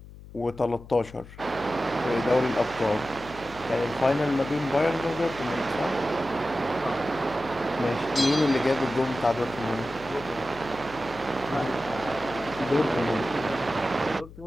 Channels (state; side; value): noise; left; hum, 17 dB below the sound